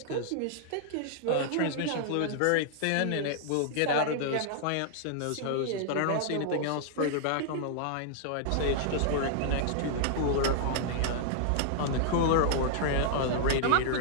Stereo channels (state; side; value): different; both; correlation -0.01